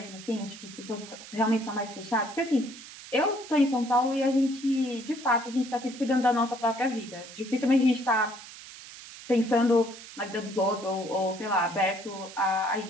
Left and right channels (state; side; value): noise; right; hiss, 15 dB below the sound